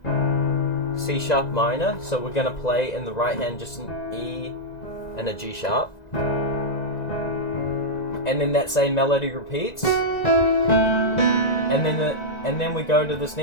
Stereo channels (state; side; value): late; right; 1.9 ms